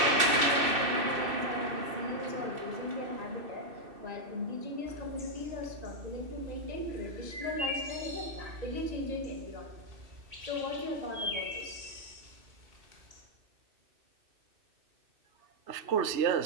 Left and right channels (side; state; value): left; late; 2.6 ms